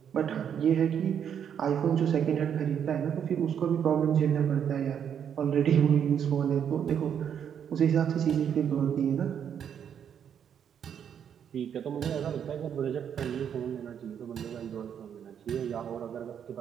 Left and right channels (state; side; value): quieter; left; 8.4 dB